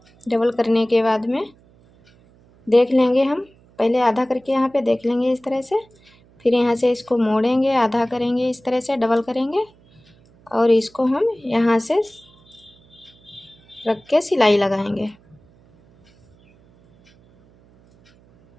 डबल करने के बाद में देख लेंगे, हम पहले आधा करके यहाँ पे देख लेंगे इस तरह से। फिर यहाँ से इसको मोड़ेंगे, आधा करेंगे इस तरह से, डबल करेंगे और इसको हम यहाँ से रख के सिलाई लगाएंगे।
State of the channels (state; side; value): noise; right; hum, 30 dB below the sound